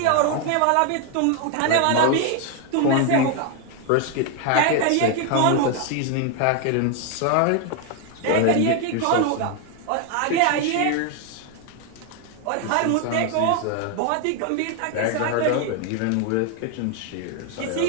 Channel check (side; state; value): both; different; correlation 0.01